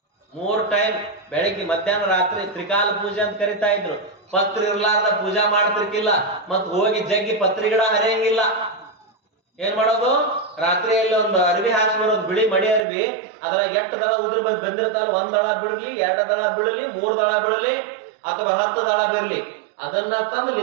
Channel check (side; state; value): left; drops out; at 12.9 s